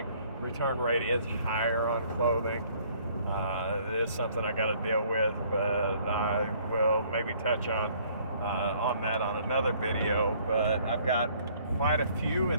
Return rate is higher on clothing. It is something I got to deal with, but I will maybe touch on that on another video. But I've got quite a few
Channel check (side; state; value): both; inverted; correlation -0.60